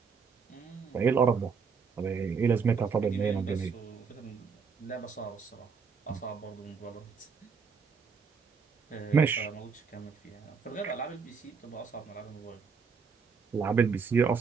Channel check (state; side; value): quieter; left; 5.7 dB